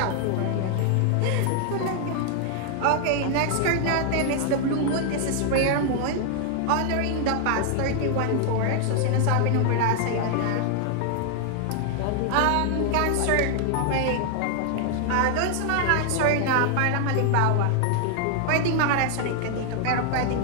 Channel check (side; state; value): both; different; correlation 0.00